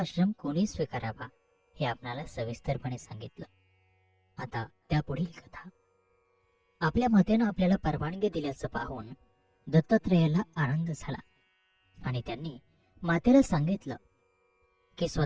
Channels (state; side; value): identical; both; correlation 1.00